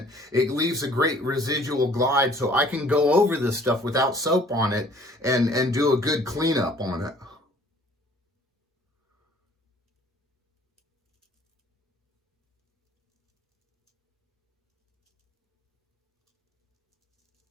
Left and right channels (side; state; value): both; normal; correlation 0.55